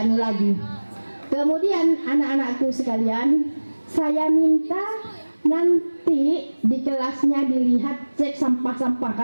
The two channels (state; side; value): inverted; both; correlation -1.00